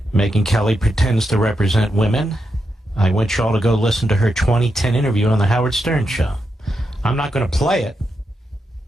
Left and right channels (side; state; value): both; normal; correlation 0.85